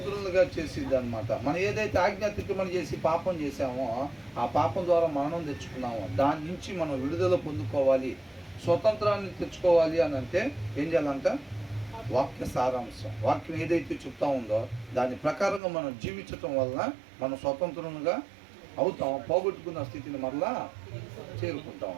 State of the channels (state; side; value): drops out; left; at 15.6 s